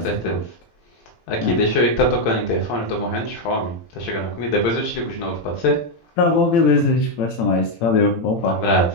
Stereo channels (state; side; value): late; right; 18 ms